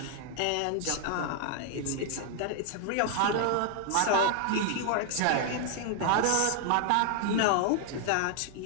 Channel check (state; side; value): different; both; correlation 0.00